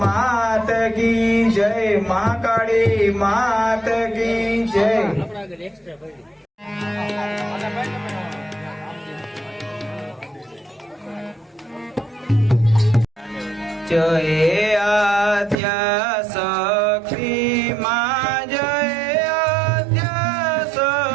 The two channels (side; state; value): left; drops out; at 15.6 s